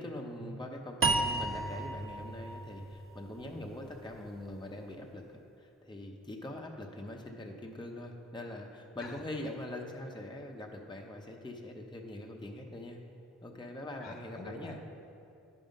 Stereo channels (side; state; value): both; normal; correlation 0.51